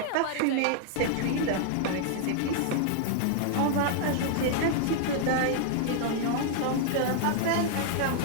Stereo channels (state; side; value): different; both; correlation 0.00